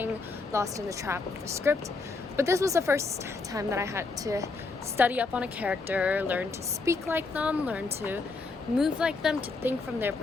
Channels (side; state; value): right; quieter; 3.9 dB